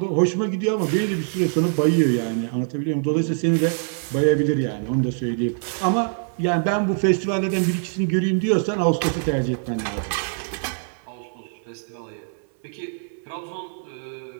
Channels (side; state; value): left; silent; 60 dB below the other